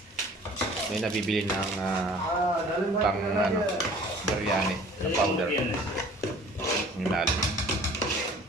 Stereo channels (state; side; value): normal; both; correlation 0.50